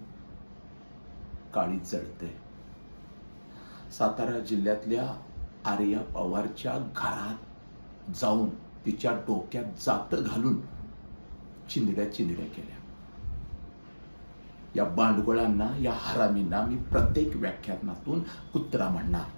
काळीज जळते. सातारा जिल्ह्यातल्या आर्या पवारच्या घरात जाऊन तिच्या डोक्यात जात घालून चिंधड्या केल्या. या बांडगुळांना, या हरामींना मी प्रत्येक व्याख्यानातून कुत्रा म्हणणार,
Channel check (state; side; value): inverted; both; correlation -1.00